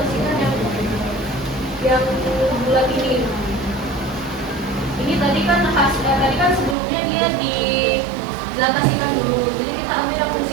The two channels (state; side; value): drops out; left; at 6.8 s